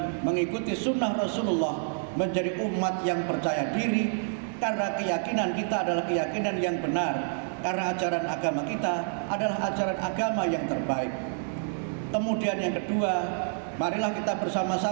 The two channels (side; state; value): left; silent; digital silence